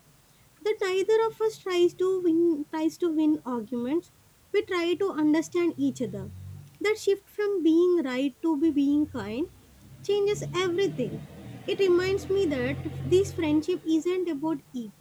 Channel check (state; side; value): identical; both; correlation 1.00